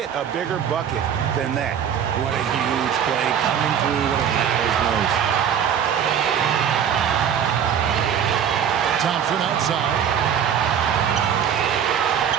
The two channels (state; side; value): quieter; left; 8.5 dB